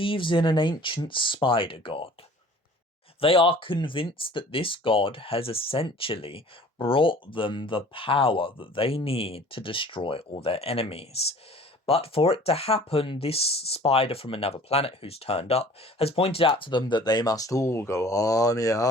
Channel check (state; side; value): normal; both; correlation 0.48